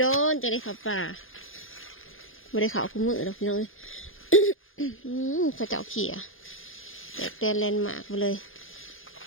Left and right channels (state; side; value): late; right; 0.59 ms